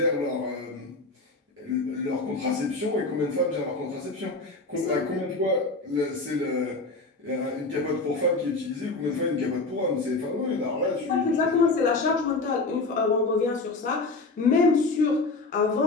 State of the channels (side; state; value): right; quieter; 3.4 dB